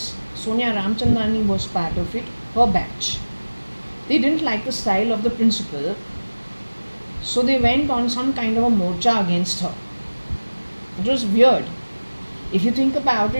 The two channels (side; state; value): both; inverted; correlation -1.00